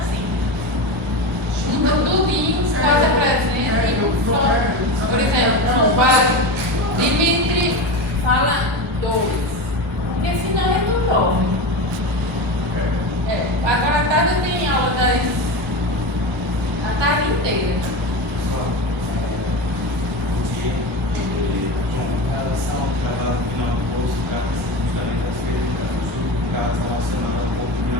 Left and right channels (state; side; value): normal; both; correlation 0.22